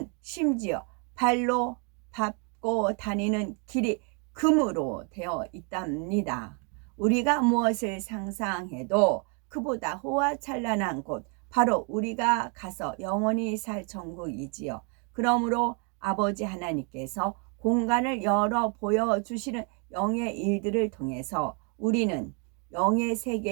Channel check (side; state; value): left; quieter; 36.8 dB